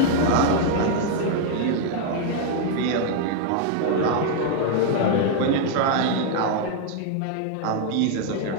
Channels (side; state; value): both; different; correlation 0.00